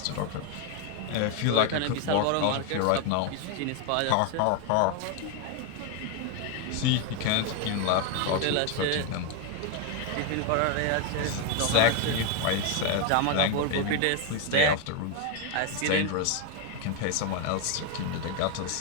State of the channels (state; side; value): different; both; correlation 0.01